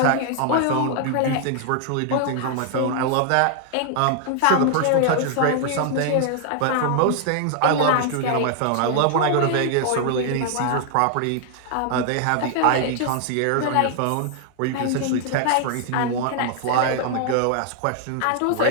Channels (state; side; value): different; both; correlation 0.00